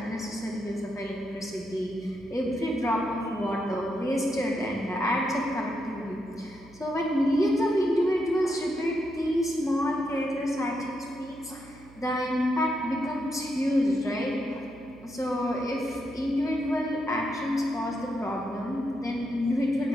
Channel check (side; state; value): right; noise; hum, 22 dB below the sound